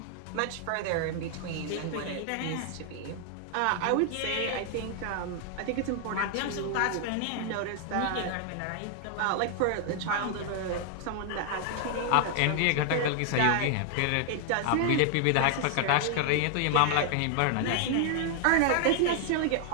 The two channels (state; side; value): different; both; correlation 0.00